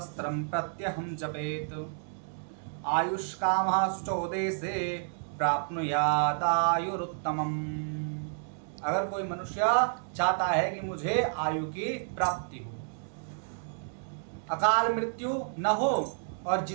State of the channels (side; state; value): left; silent; digital silence